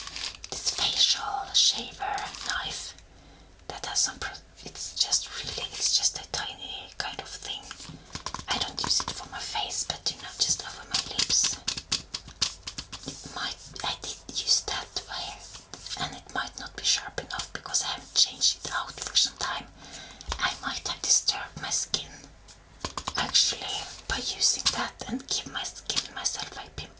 this facial shaver knife that has some it's just a tiny kind of thing. I don't use it for my face, but just over my lips. I did use that way, and it might not be sharp enough because I haven't changed it out for some time. I might have disturbed my skin actually by using that and give myself a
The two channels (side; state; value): both; identical; correlation 1.00